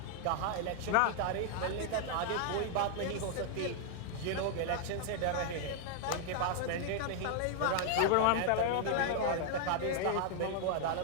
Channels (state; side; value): different; both; correlation 0.00